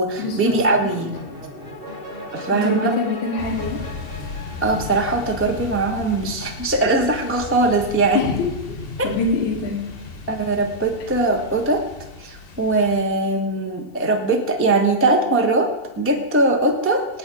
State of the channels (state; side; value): late; right; 2.7 ms